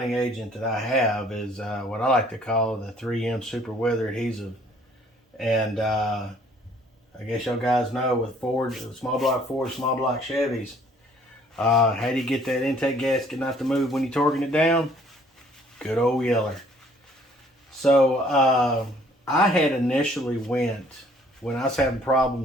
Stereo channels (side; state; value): both; normal; correlation 0.59